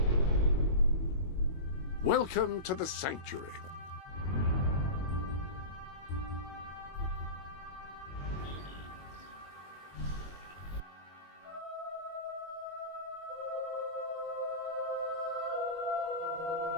Welcome to the Sanctuary.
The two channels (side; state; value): right; late; 22 ms